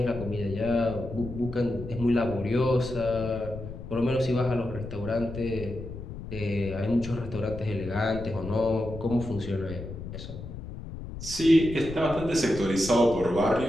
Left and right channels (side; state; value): left; noise; rumble, 10 dB below the sound